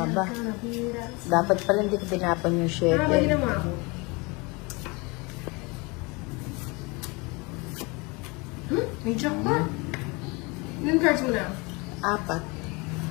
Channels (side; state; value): right; quieter; 27.3 dB